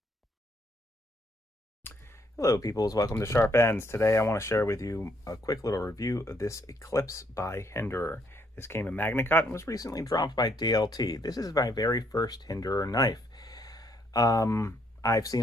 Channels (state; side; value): normal; both; correlation 0.70